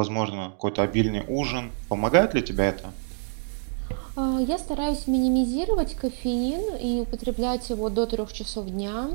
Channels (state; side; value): silent; left; 61 dB below the other